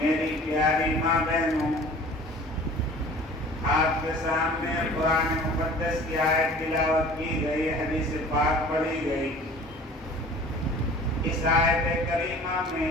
پیاری ماں بہنوں، آپ کے سامنے قرآن مقدس کی آیت تلاوت کی گئی، حدیث پاک پڑھی گئی۔ اس آیت کریمہ میں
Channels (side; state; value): both; normal; correlation 0.46